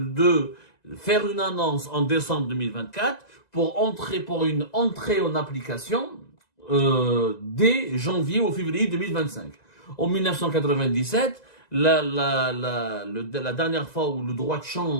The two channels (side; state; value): right; late; 2.0 ms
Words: de faire une annonce en décembre 2024 pour une entrée en application dès janvier ou février 2025. En 1997, la dernière fois où le droit de